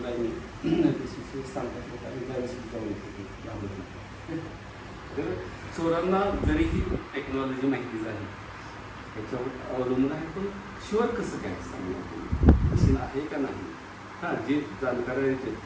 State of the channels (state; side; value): identical; both; correlation 1.00